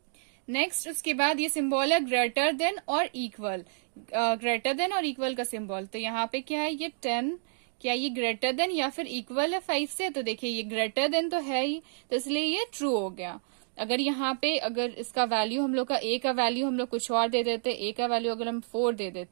नेक्स्ट उसके बाद ये सिंबल है ग्रेटर देन और इक्वल, ग्रेटर देन और इक्वल का सिंबल, तो यहाँ पे क्या है ये 10, क्या ये ग्रेटर देन या फिर इक्वल है 5 से, तो देखिए ये ग्रेटर देन तो है ही, तो इसलिए ये ट्रू हो गया। अगर यहाँ पे अगर इसका वैल्यू हम लोग का ए का वैल्यू हम लोग कुछ और दे देते, ए का वैल्यू अगर हम 4 दे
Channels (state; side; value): silent; left; digital silence